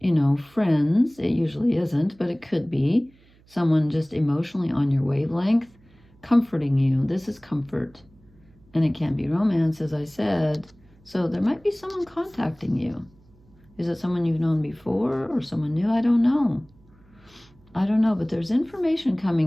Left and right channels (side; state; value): right; noise; hum, 29 dB below the sound